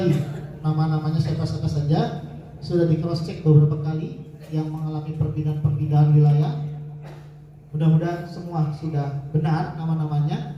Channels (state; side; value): identical; both; correlation 1.00